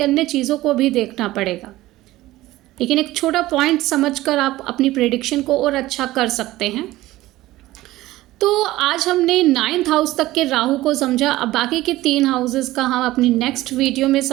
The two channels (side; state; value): left; quieter; 16.8 dB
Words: अन्य चीज़ों को भी देखना पड़ेगा। लेकिन एक छोटा पॉइंट समझकर आप अपनी प्रेडिक्शन को और अच्छा कर सकते हैं। तो आज हमने 9th हाउस तक के राहु को समझा, अब बाकी के 3 हाउसेस का हम अपनी नेक्स्ट वीडियो में